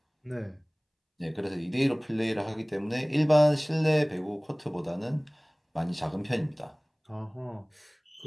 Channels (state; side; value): identical; both; correlation 1.00